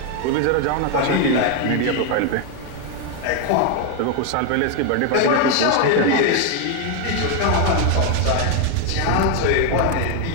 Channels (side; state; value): both; different; correlation 0.01